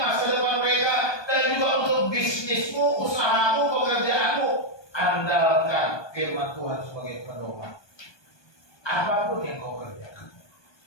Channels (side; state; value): right; late; 1.2 ms